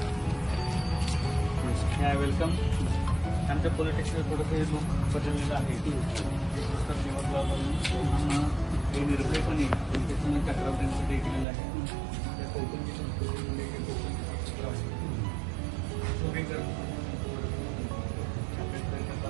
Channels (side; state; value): left; drops out; at 11.5 s